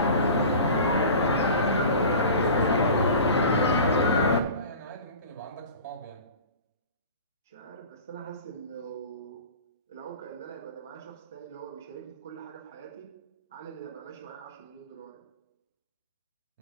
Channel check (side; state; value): both; inverted; correlation -0.38